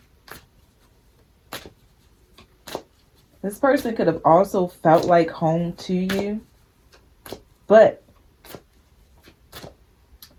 This person could have also felt like home to you, but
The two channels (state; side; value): identical; both; correlation 1.00